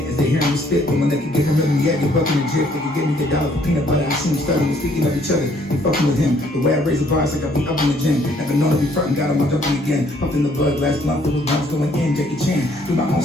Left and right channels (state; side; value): normal; both; correlation 0.64